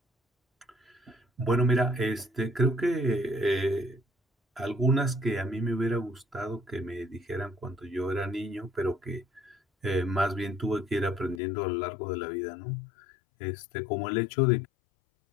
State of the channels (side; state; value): right; drops out; at 11.4 s